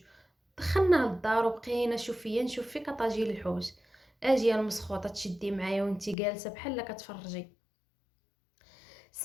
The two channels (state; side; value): drops out; right; at 6.2 s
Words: دخلنا للدار وبقينا نشوف فيك طاجيل الحوت. اجي المسخوطه تشدي معايا وانتي جالسه بحال كتفرجي.